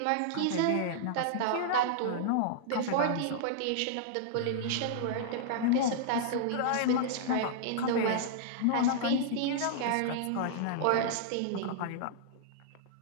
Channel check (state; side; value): different; both; correlation -0.01